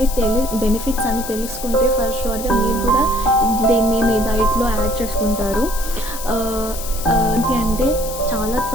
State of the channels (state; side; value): noise; left; hiss, 10 dB below the sound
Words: బెనిఫిట్స్ అని తెలుసుకుంటే ఫర్ షూర్గా మీరు కూడా దీన్ని మీ డైట్లో యాడ్ చేసుకుంటారు. ఏంటి అంటే చాలా